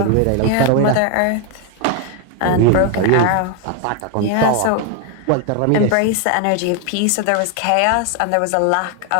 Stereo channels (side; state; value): both; different; correlation 0.01